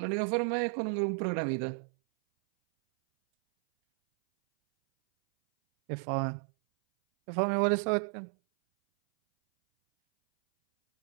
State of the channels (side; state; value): left; silent; 57 dB below the other